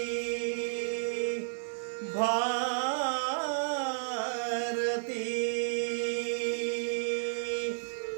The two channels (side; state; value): left; silent; 56 dB below the other